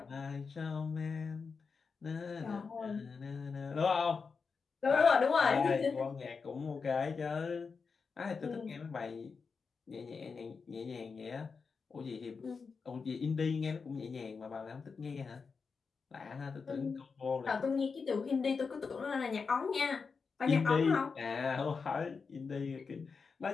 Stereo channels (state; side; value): quieter; right; 5.1 dB